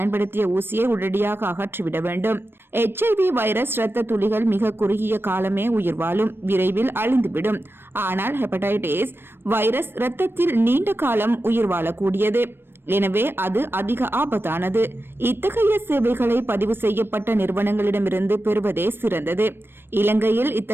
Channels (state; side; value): late; left; 0.10 ms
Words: ஊசியை உடனடியாக அகற்றிவிட வேண்டும். HIV வைரஸ் இரத்த துளிகள் மிக குறுகிய காலமே உயிர் வாழும், விரைவில் அழிந்துவிடும். ஆனால் ஹெப்படைட்டிஸ் வைரஸ் இரத்தத்தில் நீண்ட காலம் உயிர் வாழக்கூடியது. எனவே அது அதிக ஆபத்தானது. இத்தகைய சேவைகளை பதிவு செய்யப்பட்ட நிறுவனங்களிடமிருந்து பெறுவதே சிறந்தது. இலங்கையில்